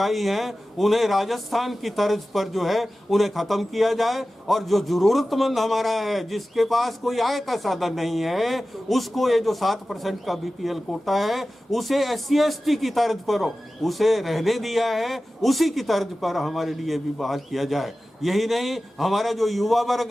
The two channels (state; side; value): normal; both; correlation 0.95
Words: हैं, उन्हें राजस्थान की तर्ज पर जो है उन्हें ख़त्म किया जाए। और जो ज़रूरतमंद हमारा है, जिसके पास कोई आय का साधन नहीं है, उसको ये जो 7% का बीपीएल कोटा है, उसे SC/ST की तर्ज पर उसे रहने दिया है, उसी की तर्ज पर हमारे लिए भी बहाल किया जाए। यही नहीं, हमारा जो युवा वर्ग